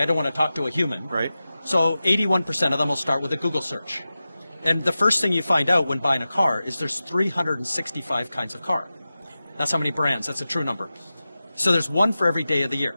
don't want to talk to a human. Right. So 81% of them will start with a Google search. And the first thing you find out when buying a car is there's 365 kinds of car. That's how many brands. That's a true number. So there's one for every day of the year.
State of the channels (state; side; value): inverted; both; correlation -0.94